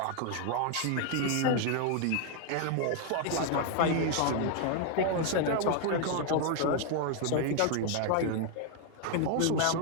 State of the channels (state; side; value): different; both; correlation 0.00